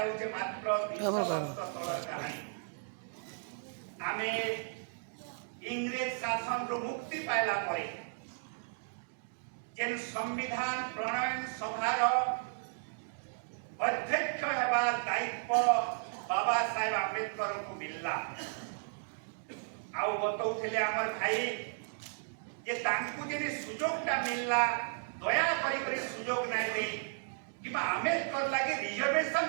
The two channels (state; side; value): silent; left; digital silence